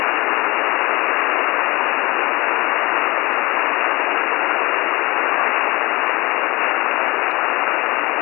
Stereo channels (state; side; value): quieter; right; 23.7 dB